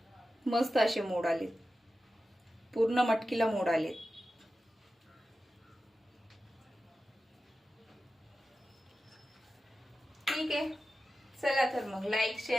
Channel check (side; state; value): both; normal; correlation 0.93